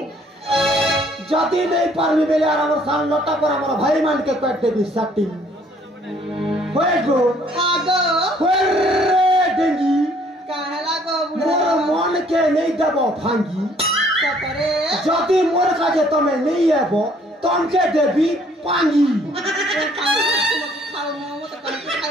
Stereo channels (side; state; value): both; normal; correlation 0.61